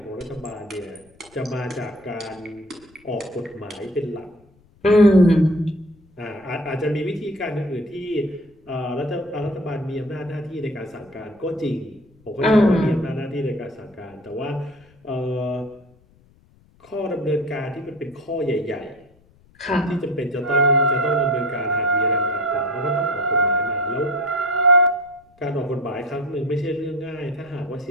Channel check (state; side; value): noise; left; rumble, 30 dB below the sound